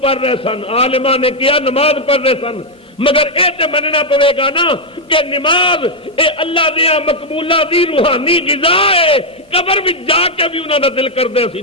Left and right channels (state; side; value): normal; both; correlation 0.00